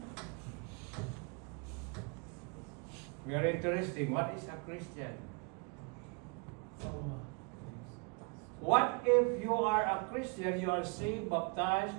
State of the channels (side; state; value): left; quieter; 34.0 dB